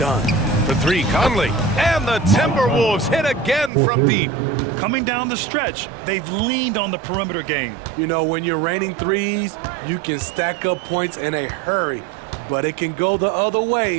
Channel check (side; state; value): left; drops out; at 3.7 s